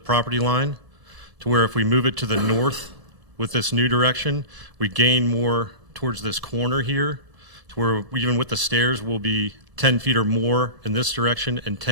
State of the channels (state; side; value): late; left; 1.7 ms